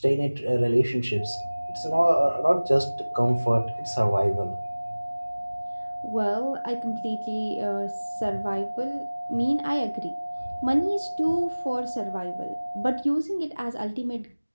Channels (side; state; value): both; inverted; correlation -1.00